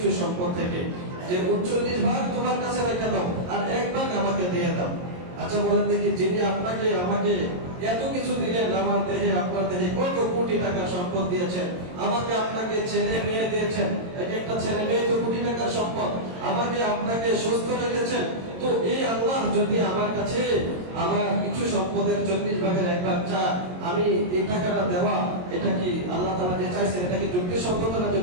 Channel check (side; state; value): left; late; 22 ms